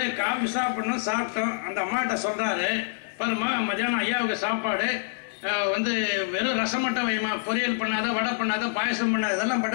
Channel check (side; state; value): right; silent; digital silence